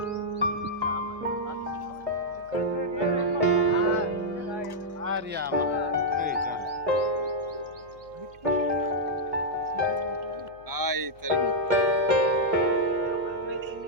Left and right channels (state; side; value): noise; left; hum, 26 dB below the sound